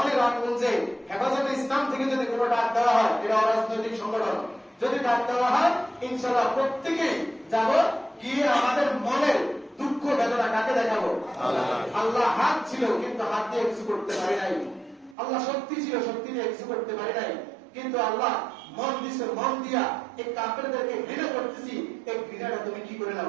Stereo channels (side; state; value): left; drops out; at 15.2 s